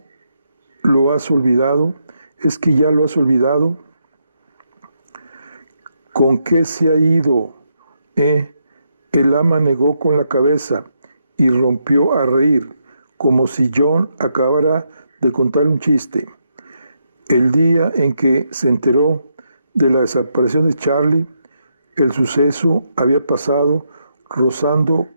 lo has olvidado? ¿Es que ya lo has olvidado? ¿Con qué se ha ido? El ama negó con la cabeza y rompió a reír, como si John acabara de contar un chiste. El día en que se enteró de la desaparición de Charlie, el suceso había pasado rozando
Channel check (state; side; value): inverted; both; correlation -0.80